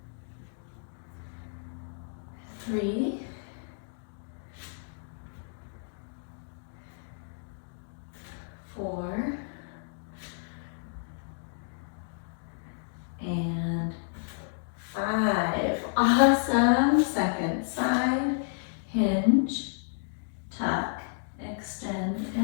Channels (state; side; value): silent; right; digital silence